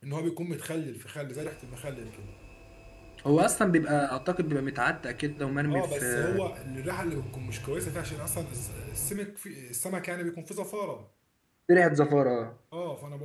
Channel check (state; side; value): identical; both; correlation 1.00